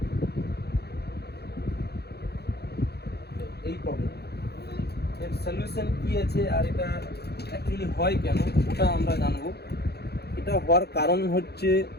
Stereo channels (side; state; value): right; late; 0.47 ms